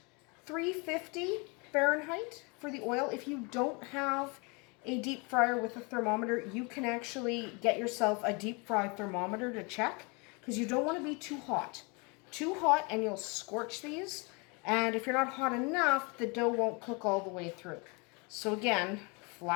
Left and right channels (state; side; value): quieter; right; 30.4 dB